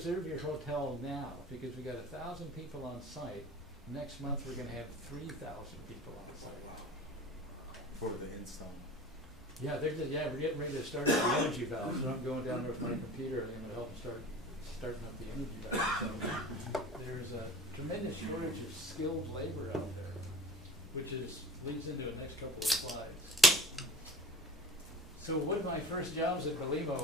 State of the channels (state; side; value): normal; both; correlation 0.41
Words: your hotel now because we got 1,000 people on site. Next month we're going to have 3,000 people on site. For the install. Yeah, we're getting ready to start up the energy valve, so I'm going down there with my computer and I'm going to help them starting up the energy valve. So there's a tremendous shortage of skilled labor out there, which leads into the next couple of slides. So one of my first jobs at